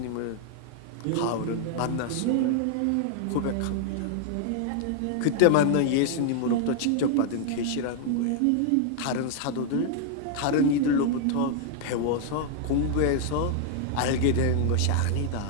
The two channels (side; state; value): both; different; correlation 0.00